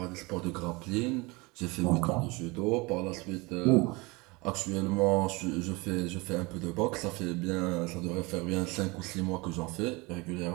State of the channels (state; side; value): quieter; left; 25.1 dB